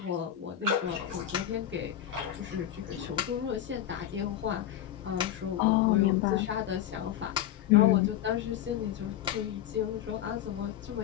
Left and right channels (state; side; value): quieter; right; 11.3 dB